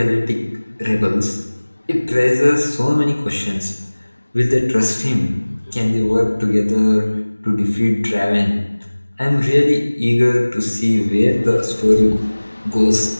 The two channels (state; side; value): inverted; both; correlation -1.00